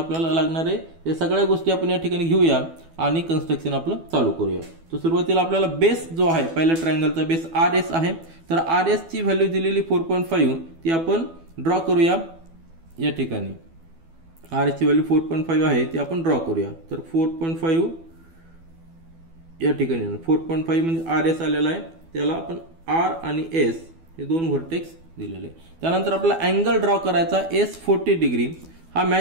लागणार आहे. या सगळ्या गोष्टी आपण या ठिकाणी घेऊया आणि कन्स्ट्रक्शन आपलं चालू करूया. तर सुरुवातीला आपल्याला बेस जो आहे, पहिल्या ट्रायंगलचा बेस RS आहे. तर RS ची व्हॅल्यू दिलेली 4.5 ती आपण ड्रॉ करूया. या ठिकाणी RS ची व्हॅल्यू 4.5 आहे, ती आपण ड्रॉ करूया. तर 4.5 या ठिकाणी 4.5 म्हणजे RS आलेला आहे, त्याला आपण R आणि S हे दोन व्हर्टेक्स दिलेले. त्यानंतर आपला अँगल ड्रॉ करायचा S 40 डिग्री हा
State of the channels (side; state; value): left; late; 12 ms